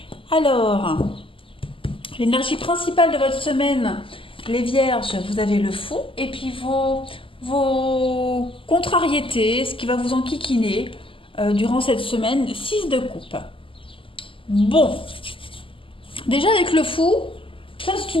Alors, l'énergie principale de votre semaine, les Vierges, vous avez le fou, et puis vos contrariétés, ce qui va vous enquiquiner durant cette semaine, 6 de coupe. Bon, déjà avec le fou, ça c'est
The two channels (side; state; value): right; late; 0.25 ms